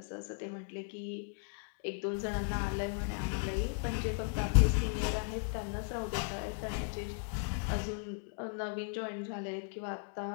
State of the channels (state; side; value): silent; right; 54 dB below the other